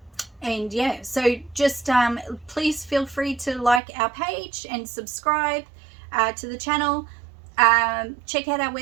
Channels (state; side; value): drops out; left; at 3.8 s